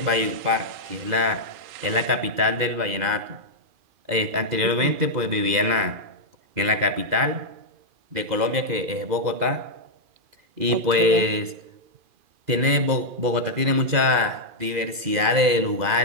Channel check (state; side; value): late; left; 2.0 ms